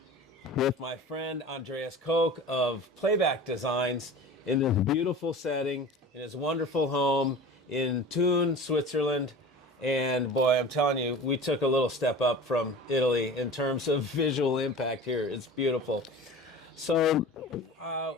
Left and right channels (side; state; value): both; normal; correlation 0.37